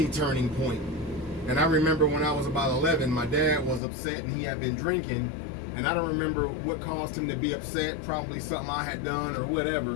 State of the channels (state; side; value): drops out; right; at 3.8 s